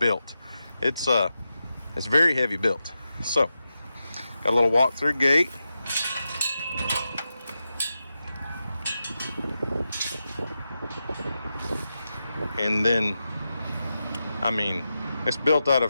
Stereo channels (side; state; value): both; inverted; correlation -0.90